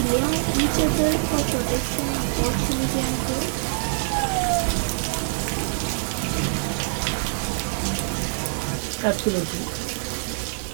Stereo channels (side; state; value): left; silent; digital silence